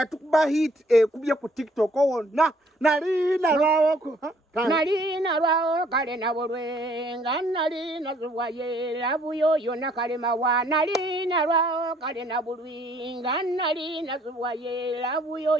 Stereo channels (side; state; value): both; normal; correlation 0.62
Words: hit kubye ku TikTok wonna. Nalina lwawo kale nabulwenga nalina zuwaye labuyo yonna kale mawa nalina lwawo kale nabulwenga nalina zuwaye labuyo